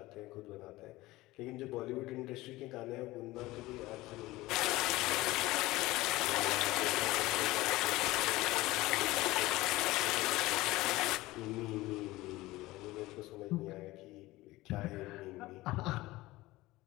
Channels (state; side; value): quieter; right; 18.8 dB